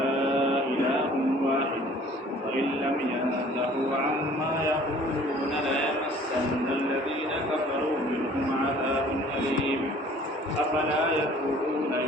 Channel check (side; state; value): both; normal; correlation 0.52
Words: إله واحد وإن لم ينتهوا عما يقولون ليمسن الذين كفروا منهم عذاب أليم أفلا يتوبون